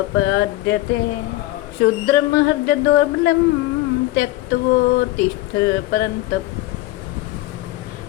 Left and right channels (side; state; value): right; quieter; 17.5 dB